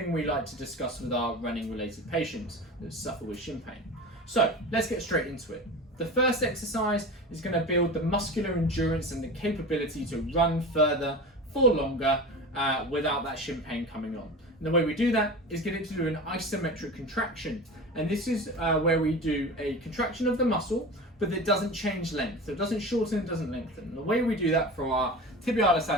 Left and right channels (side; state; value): both; normal; correlation 0.31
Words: we like to discuss with our running related patients that suffer with shin pain. So let's get straight into it. The first exercise is going to build the muscular endurance and the capability to run further for longer without that shin pain coming on. And the way we do that is get it to do an isometric contraction. And this is where we do a contraction of the muscle, but it doesn't change length. So it doesn't shorten, it doesn't lengthen. And the way we do that for our tibialis